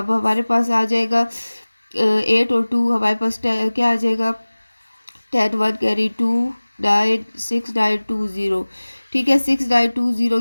हमारे पास आ जाएगा 8 और 2 हमारे पास क्या आ जाएगा, 10 1 कैरी 2 9 6920, ठीक है। 6920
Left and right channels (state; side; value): inverted; both; correlation -1.00